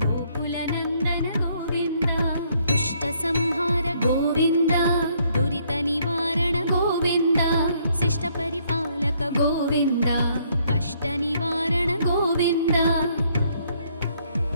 గోకుల నందన గోవింద దుష్ట సంహార గోవింద దురిత నివారణ గోవింద శిష్ట పరిపాలక గోవింద కష్ట నివారణ గోవింద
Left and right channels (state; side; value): inverted; both; correlation -0.68